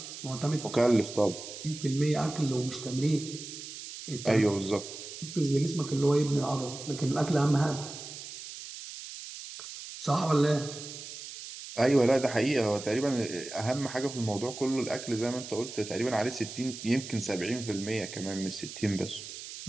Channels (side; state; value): right; noise; hiss, 11 dB below the sound